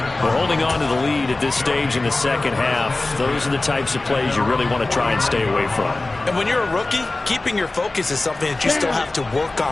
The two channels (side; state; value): right; quieter; 3.1 dB